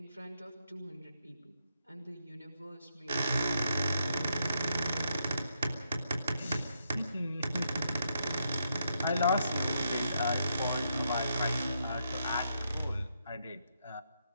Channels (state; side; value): inverted; both; correlation -0.80